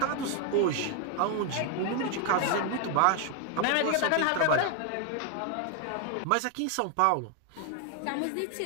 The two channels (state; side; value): different; both; correlation 0.01